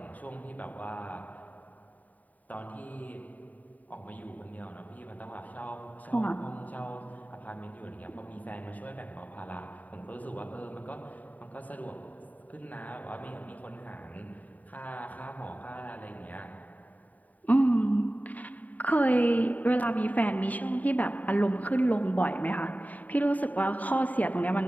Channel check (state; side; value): late; right; 0.074 ms